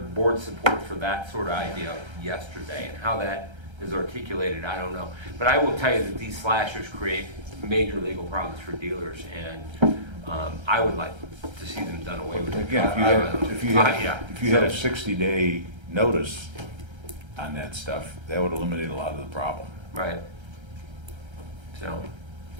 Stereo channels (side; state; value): left; late; 1.3 ms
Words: board support for that sort of idea yesterday, and how that is articulated, I don't know. But I will tell you that these slashers create major legal problems for dealers, and I would like to see them done away with. Again, if you had a 60-day notice on that stuff, that would eliminate a lot of the problem. Right.